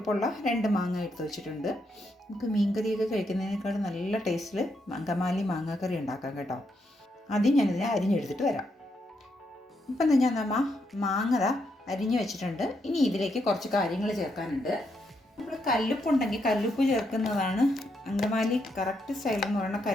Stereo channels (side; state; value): both; normal; correlation 0.79